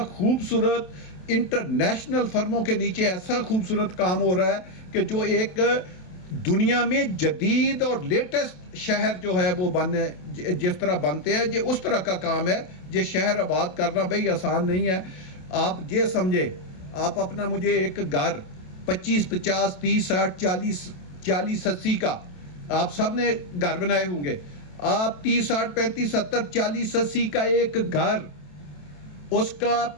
خوبصورت انٹرنیشنل فرموں کے نیچے ایسا خوبصورت کام ہو رہا ہے کہ جو ایک دنیا میں جدید اور لیٹسٹ شہر جو ہے وہ جس طرح بنتے ہیں، یہ اس طرح کا کام ہے۔ یہ شہر آباد کرنا بھئی آسان نہیں ہے۔ آپ یہ سمجھے، آپ اپنا مجھے ایک گھر 25, 50, 30, 60, 40, 80 کا آپ سب نے گھر بنائے ہوں گے، آپ 30, 60, 35, 70, 40, 80 کا ایک گھر، اس کا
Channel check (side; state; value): right; late; 27 ms